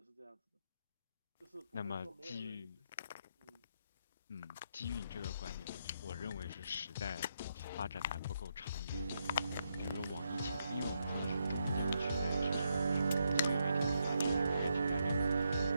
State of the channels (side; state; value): both; inverted; correlation -0.80